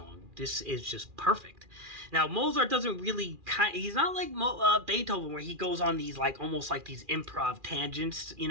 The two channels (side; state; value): left; late; 2.4 ms